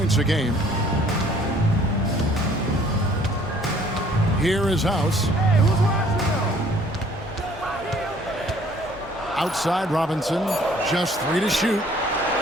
a game. Here is House. Outside Robinson, just 3 to shoot.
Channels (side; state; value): both; normal; correlation 0.58